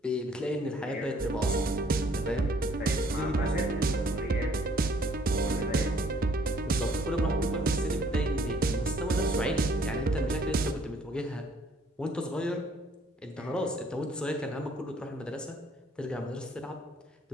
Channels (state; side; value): normal; both; correlation 0.61